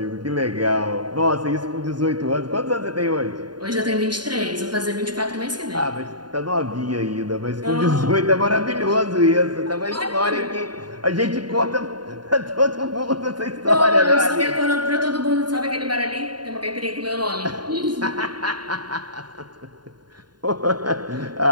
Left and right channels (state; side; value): late; left; 0.71 ms